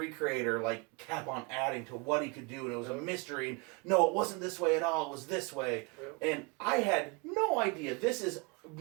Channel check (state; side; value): quieter; left; 29.2 dB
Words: creator, like, kept on adding to what he could do, and it was a mystery. And, no, it wasn't this way at all, it was this way. Yep. And I had no idea. This is